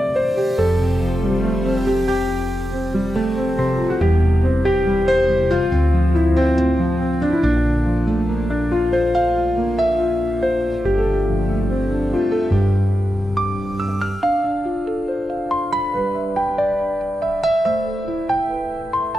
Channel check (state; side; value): normal; both; correlation 0.90